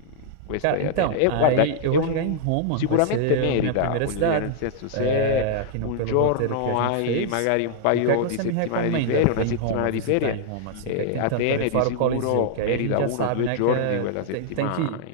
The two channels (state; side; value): different; both; correlation -0.01